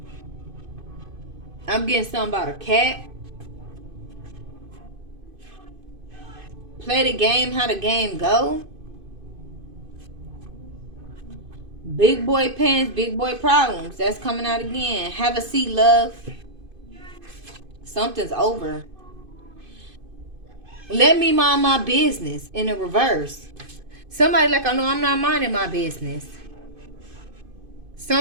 I'm getting something about a cat. Play the game, how the game go. Big boy pains, big boy problems. That's coming out again. Have a seat, love. Something's over. Let me mind my business in the reverse. Somebody like, I know I'm not minding my business.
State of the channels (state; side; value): late; left; 2.5 ms